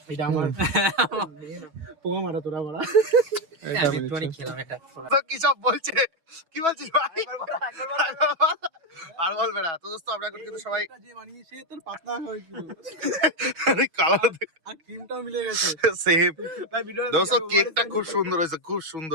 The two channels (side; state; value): left; late; 6.2 ms